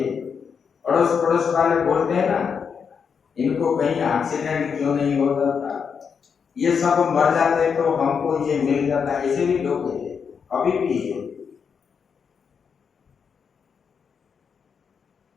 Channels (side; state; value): right; quieter; 6.4 dB